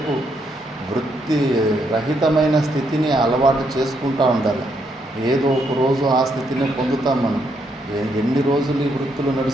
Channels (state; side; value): normal; both; correlation 0.76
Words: వృత్తి రహితమైన స్థితిని అలవాటు చేసుకుంటూ ఉండాలి. ఏదో ఒక రోజు ఆ స్థితిని పొందుతాం మనం. ఎన్ని రోజులు ఈ వృత్తులు